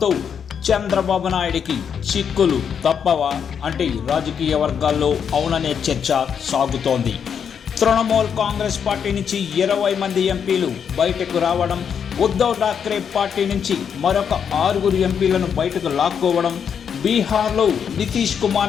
చంద్రబాబు నాయుడికి చిక్కులు తప్పవా అంటే రాజకీయ వర్గాల్లో అవుననే చర్చ సాగుతోంది. తృణమూల్ కాంగ్రెస్ పార్టీ నుంచి 20 మంది ఎంపీలు బయటకు రావడం, ఉద్ధవ్ ఠాక్రే పార్టీ నుంచి మరొక 6 ఎంపీలను బయటకు లాక్కోవడం, బీహార్లో నితీష్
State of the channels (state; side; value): quieter; right; 7.4 dB